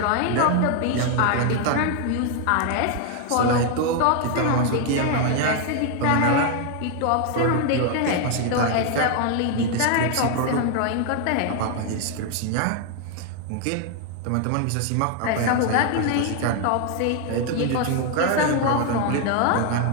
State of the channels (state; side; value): different; both; correlation 0.01